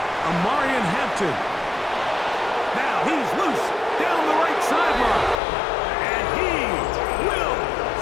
Amarian Hampton. Now he's loose down the right sideline. And he will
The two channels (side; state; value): right; drops out; at 5.4 s